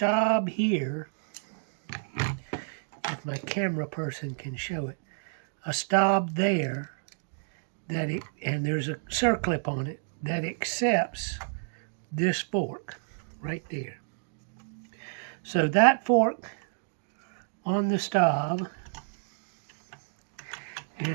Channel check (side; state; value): left; silent; digital silence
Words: here, if my camera person can show it. A stop there, and there's a circlip on it that accepts this fork right there. So that fork on the stop